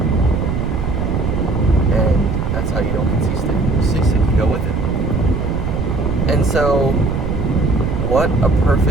And that's how you don't get seasick. You go with it. And so, what a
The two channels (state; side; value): noise; right; rumble, 1 dB below the sound